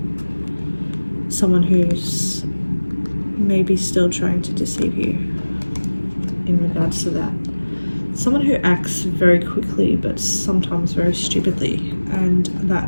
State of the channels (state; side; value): inverted; both; correlation -1.00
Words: someone who's maybe still trying to deceive you in regards to that. Someone who acts very quickly but sometimes very stupidly, and that